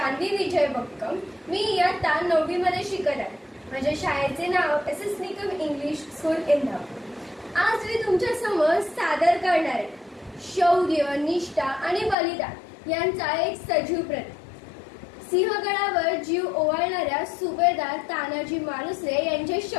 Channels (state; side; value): drops out; right; at 12.2 s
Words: विजय बक्कम. मी इयत्ता 9वी मध्ये शिकत आहे. माझ्या शाळेचे नाव S S. Nikam English school Indapur. आज मी तुमच्या समोर सादर करणार आहे शौर्य, निष्ठा आणि बलिदान यांचा एक सजीव प्रतीक. सिंहगडावर जीव ओवाळणाऱ्या सुभेदार तानाजी मालुसरे यांच्या